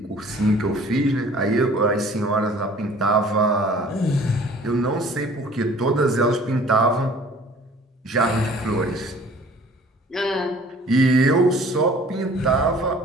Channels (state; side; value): normal; both; correlation 0.51